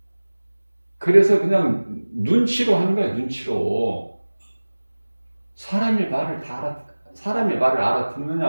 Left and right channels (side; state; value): both; inverted; correlation -1.00